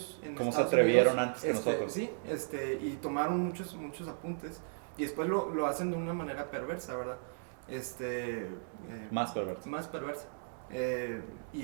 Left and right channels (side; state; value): left; silent; digital silence